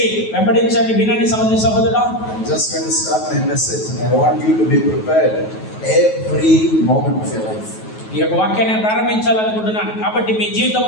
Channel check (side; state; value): right; late; 9.3 ms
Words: వెంబడించండి, వినండి సహోదరి సహోదరుడా. I'm just going to start my message and I want you to be prepared every moment of your life. ఈ యొక్క వాక్యాన్ని ప్రారంభించాలనుకుంటున్నాను కాబట్టి మీ